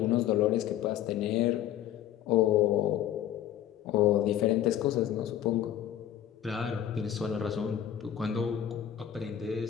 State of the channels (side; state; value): right; quieter; 11.0 dB